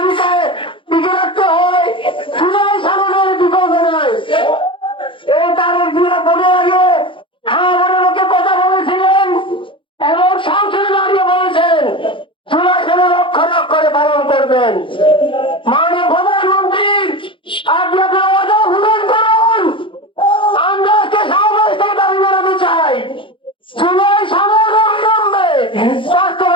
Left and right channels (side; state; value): right; late; 0.25 ms